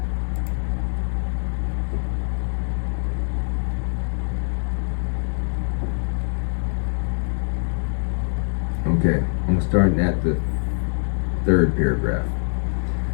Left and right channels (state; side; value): silent; right; digital silence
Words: Okay, I'm starting at the third paragraph